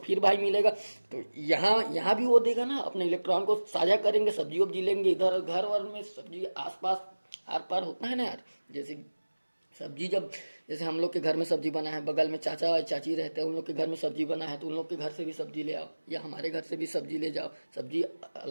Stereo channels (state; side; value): inverted; both; correlation -1.00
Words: भाई मिलेगा। तो यहाँ भी वो देगा ना, अपने इलेक्ट्रॉन को साझा करेंगे, सब्जी वब्जी लेंगे। इधर घर वर में सब्जी आसपास आर पार होता है ना यार, जैसे सब्जी जब जैसे हम लोग के घर में सब्जी बना है, बगल में चाचा चाची रहते हैं, उन लोग के घर में सब्जी बना है तो उन लोग के घर से भी सब्जी ले आओ, या हमारे घर से भी सब्जी ले जाओ। सब्जी